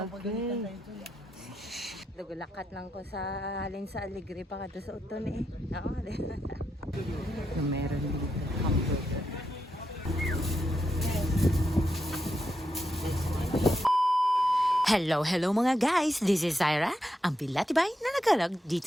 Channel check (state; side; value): normal; both; correlation 0.84